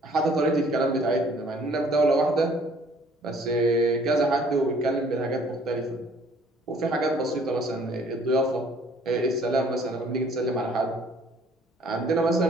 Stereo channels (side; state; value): both; normal; correlation 0.58